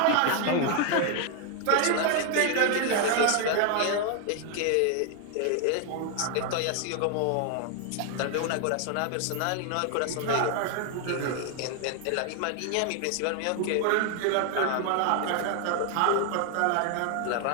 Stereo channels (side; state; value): both; different; correlation 0.00